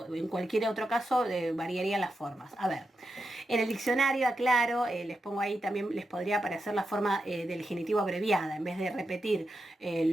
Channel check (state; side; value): normal; both; correlation 0.87